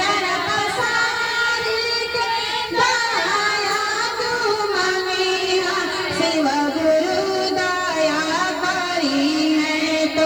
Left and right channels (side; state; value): right; noise; hiss, 27 dB below the sound